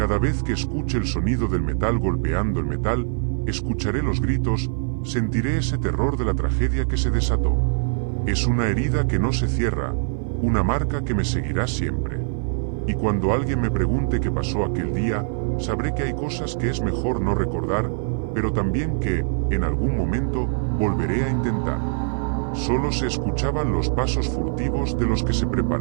vez que escuche el sonido del metal golpeando el metal, escucharé los gritos, sentiré ese terror de la tragedia que se desató. Es una herida que no se cierra, una marca que me seguirá siempre. Y cuando alguien me pregunte qué pasó aquel día, sabré que hay cosas que es mejor no recordar, pero también que, en algún momento, volveré a intentar. Solo se escuchaban los pasos furtivos de los que se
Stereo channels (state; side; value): silent; left; 56 dB below the other